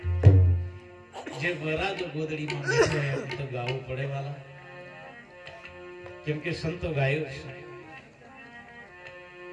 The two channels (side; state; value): both; identical; correlation 1.00